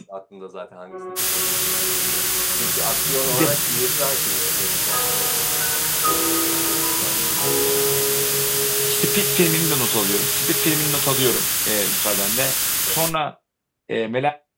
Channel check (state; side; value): identical; both; correlation 1.00